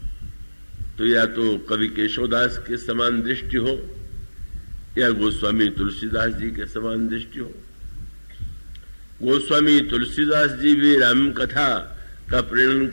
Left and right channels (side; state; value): both; inverted; correlation -1.00